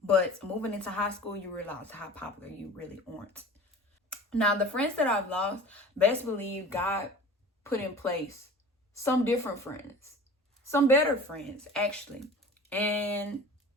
But moving into high school, you realize how popular you really aren't. Now, the friends that I've lost, best believe God put in place some different friends, some better friends, actually. And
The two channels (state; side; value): normal; both; correlation 0.40